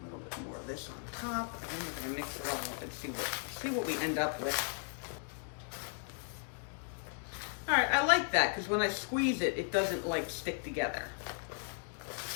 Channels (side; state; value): right; silent; 54 dB below the other